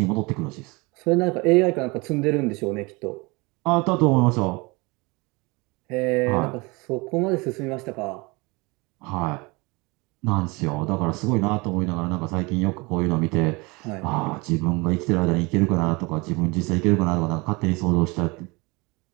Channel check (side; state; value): left; quieter; 25.9 dB